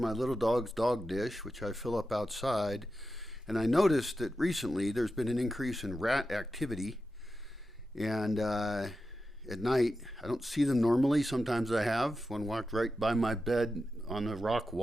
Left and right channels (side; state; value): both; normal; correlation 0.91